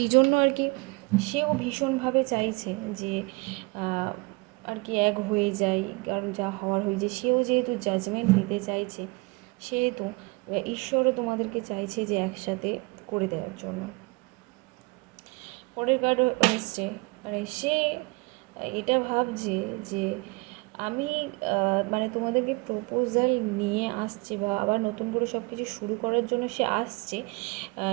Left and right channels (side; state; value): left; quieter; 26.8 dB